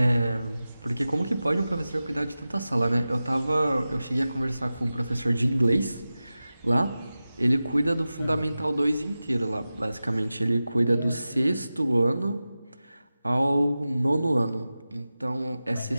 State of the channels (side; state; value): both; inverted; correlation -0.95